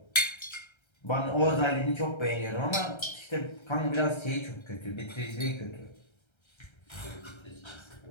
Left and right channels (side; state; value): right; late; 1.3 ms